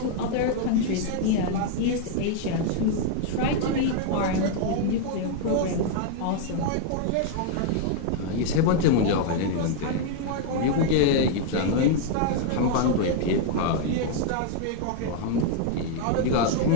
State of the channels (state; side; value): different; both; correlation 0.00